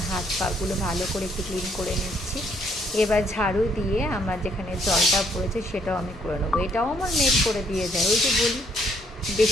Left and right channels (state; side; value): normal; both; correlation 0.68